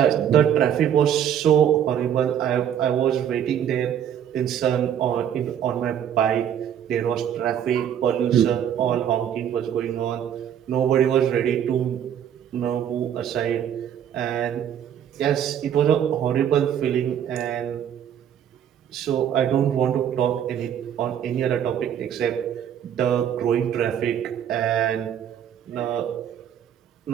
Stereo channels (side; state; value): left; quieter; 9.5 dB